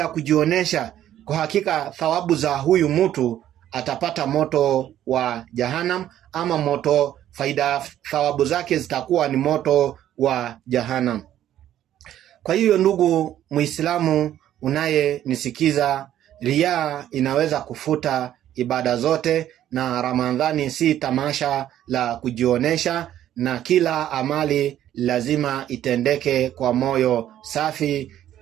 kujionesha, kwa hakika thawabu za huyu mtu atapata moto wa Jahannam, ama thawabu zake zitakuwa ni moto wa Jahannam. Kwa hiyo ndugu Muislamu unayenisikiza, riya inaweza kufuta ibada zote, na Ramadhani si tamasha la kujionesha, na kila amali lazima itendeke kwa moyo safi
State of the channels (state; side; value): quieter; left; 11.8 dB